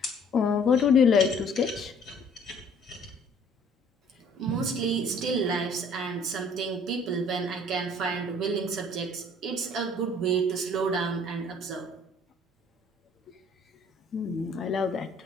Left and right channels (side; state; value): both; normal; correlation 0.56